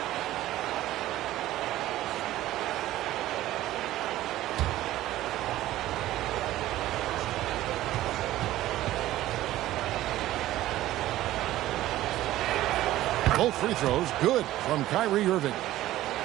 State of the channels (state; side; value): quieter; left; 14.9 dB